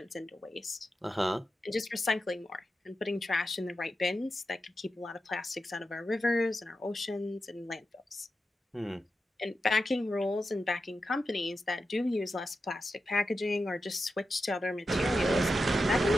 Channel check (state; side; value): normal; both; correlation 0.90